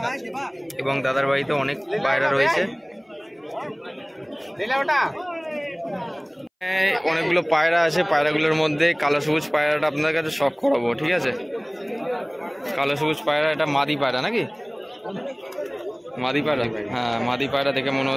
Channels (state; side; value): identical; both; correlation 1.00